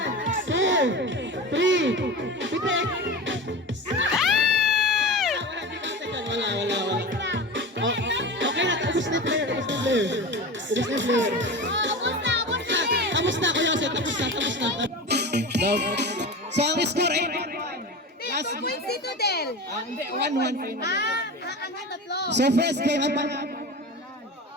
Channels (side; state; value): both; normal; correlation 0.29